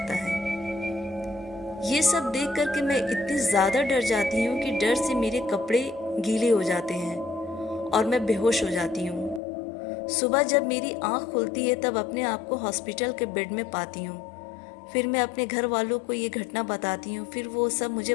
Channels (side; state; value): right; drops out; at 9.4 s